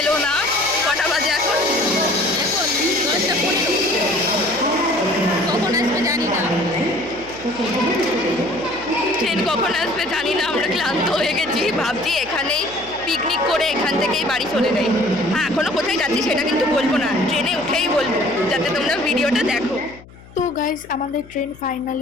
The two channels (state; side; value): noise; left; hum, 22 dB below the sound